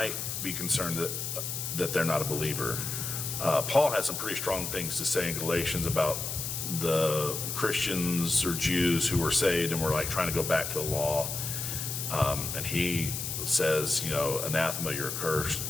be concerned that they're not a believer. Paul has some pretty strong things to say in Galatians about the Christians or Jews who were saved and were like trying to go back to the law. And he says, anathema, you're accursed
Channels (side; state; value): left; noise; hiss, 4 dB below the sound